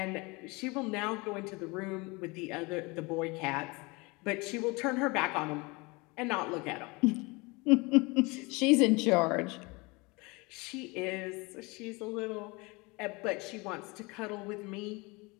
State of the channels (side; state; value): right; quieter; 26.0 dB